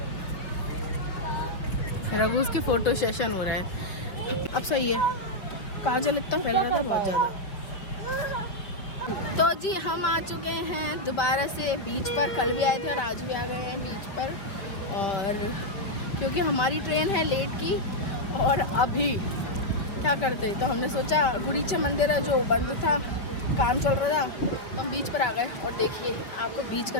रघु उसके फोटो सेशन हो रहा है। अब सही है, काजल इतना फैल रहा था बहुत ज़्यादा। तो जी हम आ चुके हैं दोबारा से बीच पर, कल भी आए थे और आज भी आ गए हैं बीच पर। और क्योंकि हमारी ट्रेन है लेट की और अभी क्या करते, तो हमने सोचा गुड़ीचा मंदिर है जो बंद था, काम चल रहा था, तो हम बीच पर आ गए। और देखिए आपको बीच का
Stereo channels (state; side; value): late; right; 5.3 ms